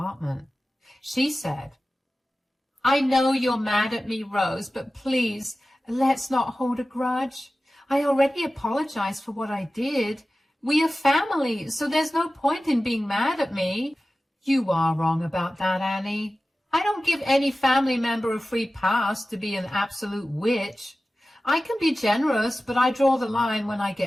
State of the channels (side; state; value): both; normal; correlation 0.95